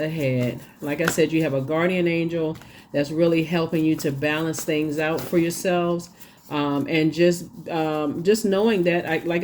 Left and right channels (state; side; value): identical; both; correlation 1.00